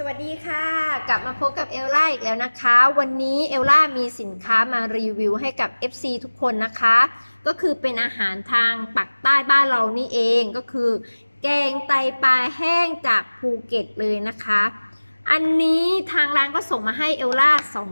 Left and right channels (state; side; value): inverted; both; correlation -1.00